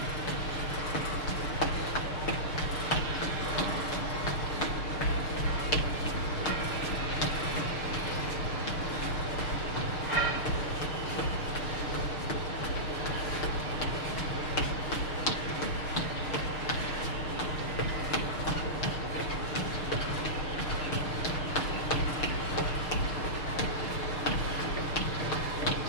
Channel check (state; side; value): late; right; 6.6 ms